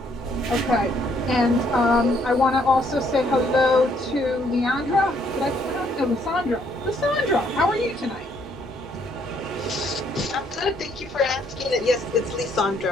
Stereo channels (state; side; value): normal; both; correlation 0.68